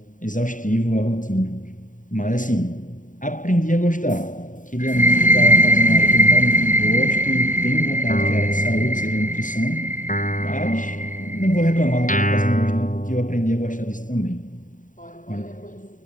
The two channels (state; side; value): late; right; 0.38 ms